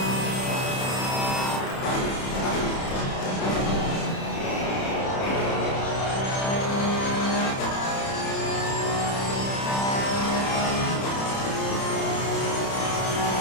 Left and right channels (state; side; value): late; right; 30 ms